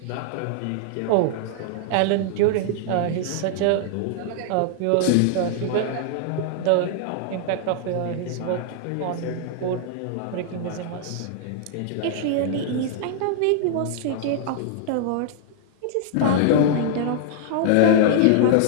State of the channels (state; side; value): different; both; correlation -0.01